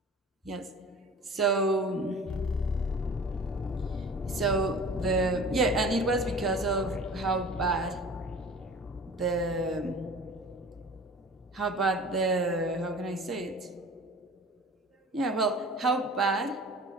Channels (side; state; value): both; normal; correlation 0.42